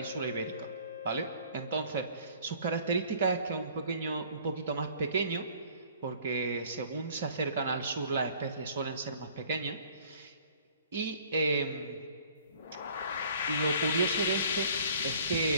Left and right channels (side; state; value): both; inverted; correlation -0.54